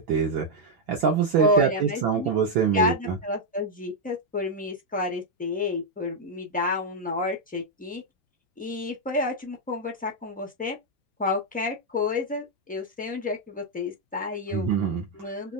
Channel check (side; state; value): both; normal; correlation -0.01